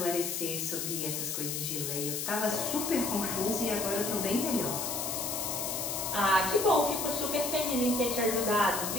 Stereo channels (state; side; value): noise; left; hiss, 2 dB below the sound